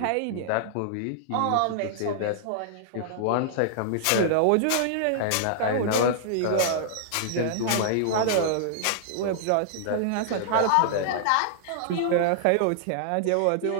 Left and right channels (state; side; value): different; both; correlation -0.01